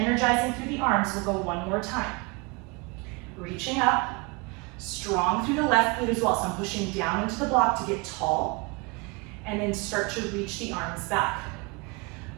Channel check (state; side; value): quieter; left; 29.0 dB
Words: through the arms. We'll go 1 more time. Reaching up, strong through the left glute as well. So I'm pushing down into the block to get tall. And then start to reach the arms back.